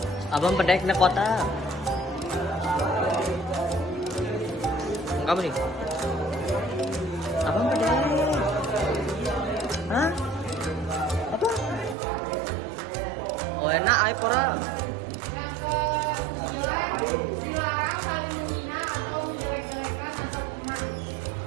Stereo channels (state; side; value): drops out; left; at 12.0 s